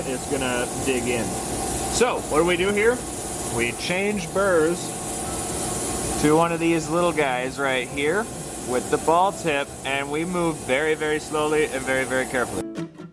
is gonna dig in. So, what do we do here? We change burrs to one of these little guys right here with the ball tip, and we move very, very slowly and very, very carefully.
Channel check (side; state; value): both; identical; correlation 1.00